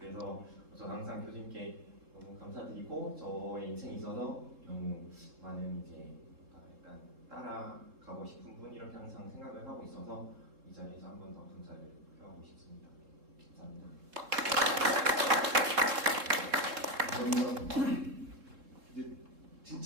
그래서 저는 항상 교수님께 너무 감사드리고 저의 인생에 있어서 너무 많은 이제 약간 따라가고 싶은 분 이렇게 항상 생각을 하고 있어서 이 자리에서 한 번 더 감사를 표하고 싶습니다. 감사합니다. 이제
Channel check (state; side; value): late; left; 3.7 ms